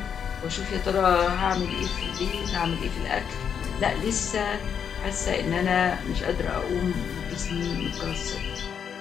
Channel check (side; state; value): right; quieter; 7.6 dB